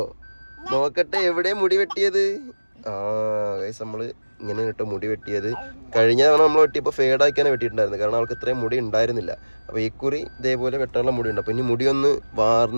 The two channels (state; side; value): inverted; both; correlation -1.00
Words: നോക്കട്ടെ, എവിടെ മുടി വെട്ടിയത്? ഗൈസ്, നമ്മള് ഇങ്ങനെ കേട്ടോ മുടി വെട്ടിയത്. കഴിഞ്ഞ തവണ നമ്മൾ വെട്ടിയപ്പോൾ ഫേഡാക്കിയാണ് വെട്ടിയിട്ടുണ്ടായിരുന്നു, കാരണം അവൾക്ക് ഇത്രയും മുടി ഉണ്ടായിരുന്നില്ല. അപ്പോൾ ഈ കുറി ഇതേപോലെ വെട്ടാനുള്ള മുടി ഉണ്ട്. അപ്പോൾ ഇനി മുടി ഒന്ന്